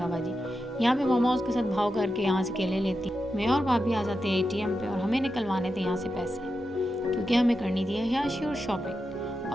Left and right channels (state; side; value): normal; both; correlation 0.89